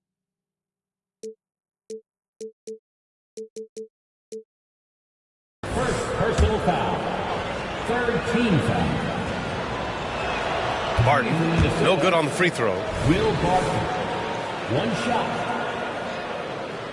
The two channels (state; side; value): identical; both; correlation 1.00